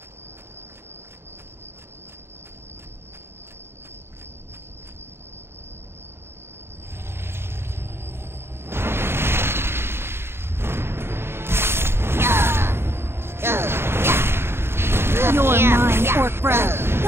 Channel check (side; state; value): left; late; 0.12 ms